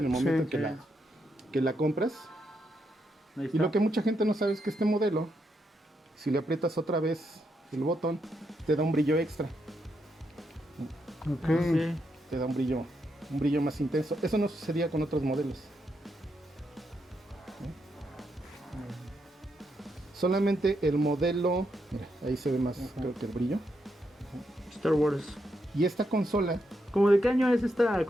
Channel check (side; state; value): both; normal; correlation 0.81